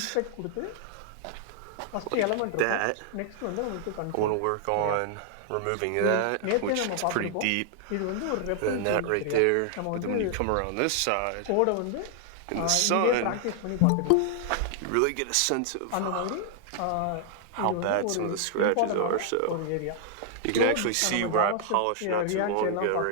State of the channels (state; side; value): different; both; correlation -0.01